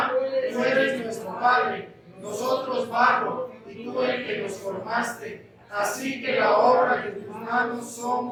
tú eres nuestro Padre, nosotros barro, y tú el que nos formaste. Así que la obra de tus manos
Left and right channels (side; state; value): both; identical; correlation 1.00